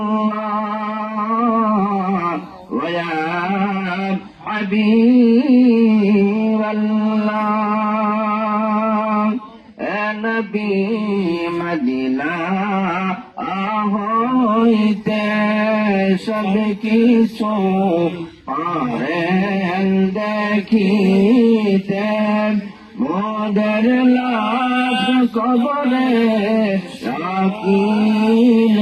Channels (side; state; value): both; identical; correlation 1.00